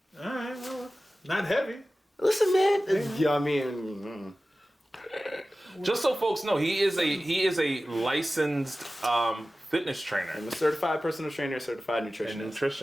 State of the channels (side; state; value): both; normal; correlation 0.96